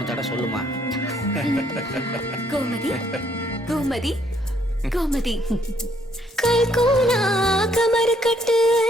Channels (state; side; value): normal; both; correlation 0.68